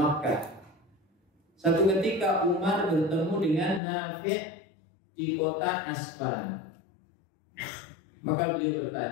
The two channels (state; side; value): drops out; right; at 3.8 s